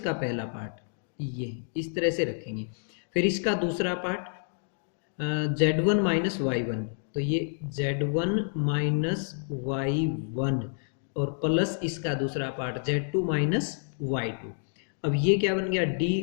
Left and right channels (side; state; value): right; silent; digital silence